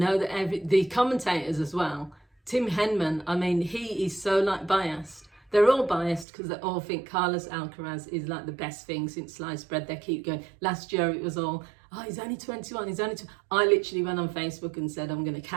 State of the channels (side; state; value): left; drops out; at 6.2 s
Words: that the commentators as well, Tim Henman, I mean, he is so biased. They're all biased because they all think Carlos Alcaraz is the best thing since sliced bread. They keep going. Last year it was all, oh, he's only 21, he's only 20. I literally went on Facebook and said, I'm going to